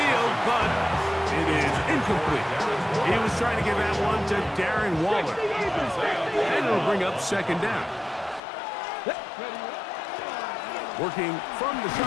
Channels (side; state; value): right; drops out; at 8.4 s